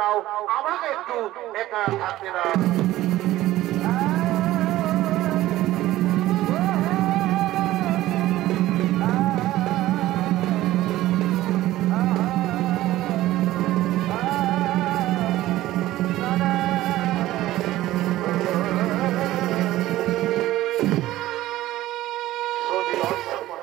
দাও, আমাকে একটু একা থাকতে দাও।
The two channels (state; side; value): quieter; left; 15.6 dB